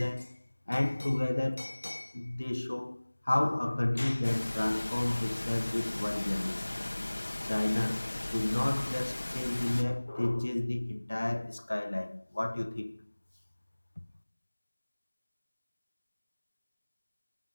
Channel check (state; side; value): inverted; both; correlation -1.00